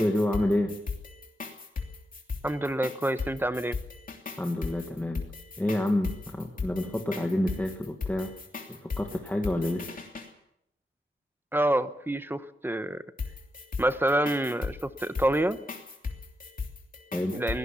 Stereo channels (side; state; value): both; normal; correlation 0.87